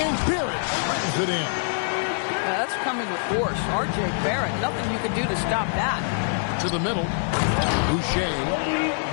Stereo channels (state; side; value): silent; right; digital silence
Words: Barrett slams it in. That's coming with force. R.J. Barrett, nothing you can do to stop that. To the middle. Boucher.